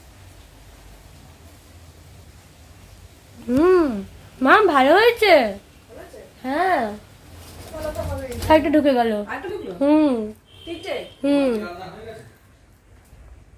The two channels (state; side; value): identical; both; correlation 1.00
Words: মা ভালো হয়েছে। হ্যাঁ, একটা ঢুকে গেল। হুম হুম।